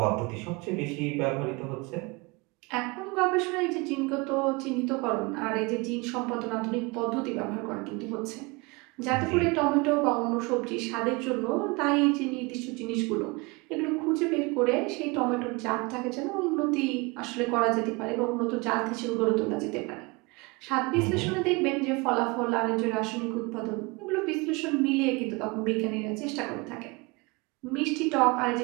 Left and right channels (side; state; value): left; quieter; 26.6 dB